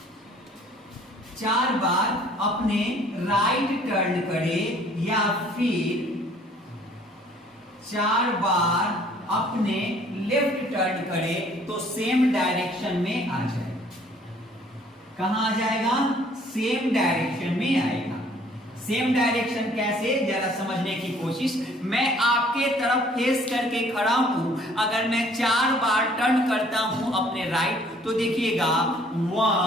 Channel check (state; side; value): normal; both; correlation 0.58